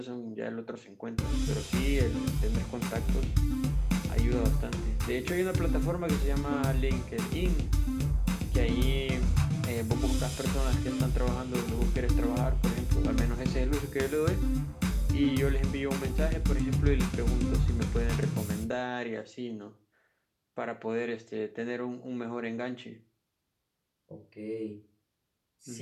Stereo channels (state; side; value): identical; both; correlation 1.00